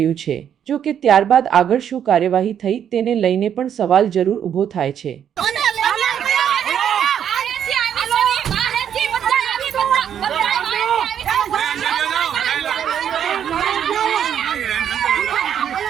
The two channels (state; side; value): quieter; left; 9.1 dB